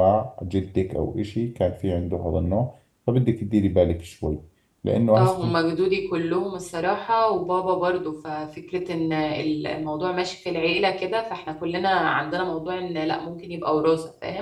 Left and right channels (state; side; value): identical; both; correlation 1.00